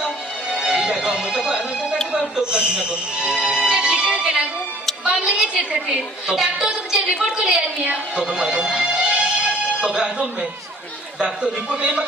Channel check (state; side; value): normal; both; correlation 0.53